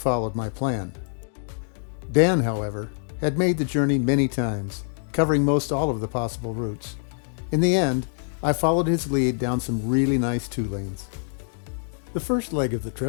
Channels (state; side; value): silent; right; digital silence